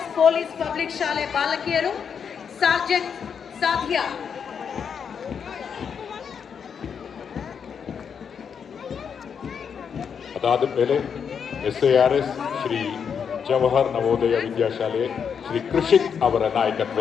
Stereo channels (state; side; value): quieter; right; 7.0 dB